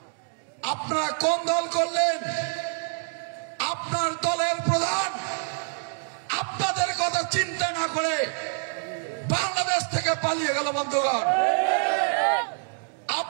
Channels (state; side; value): silent; left; 61 dB below the other